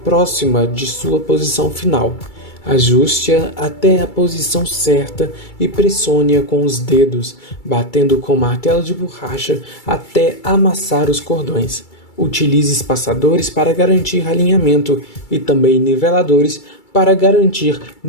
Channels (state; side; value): late; right; 2.3 ms